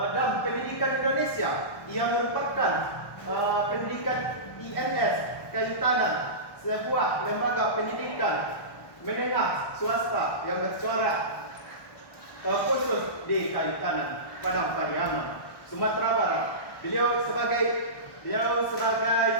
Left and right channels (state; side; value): late; right; 1.1 ms